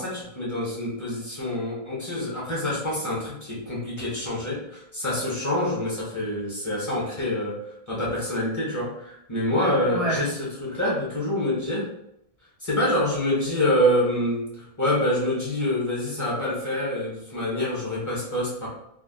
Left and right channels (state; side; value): late; left; 1.6 ms